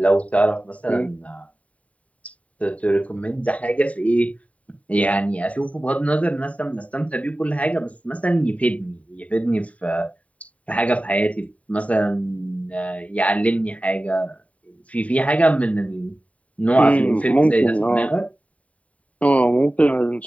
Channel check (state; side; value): late; right; 0.067 ms